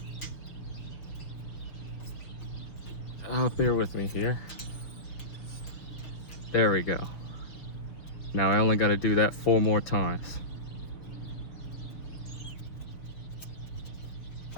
Bear with me here. There we go. Now I only got to do that 4 more times.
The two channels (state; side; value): late; right; 6.2 ms